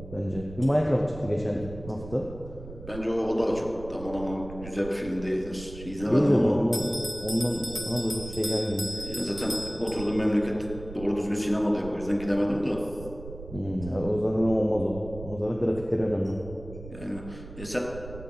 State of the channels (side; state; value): right; noise; rumble, 13 dB below the sound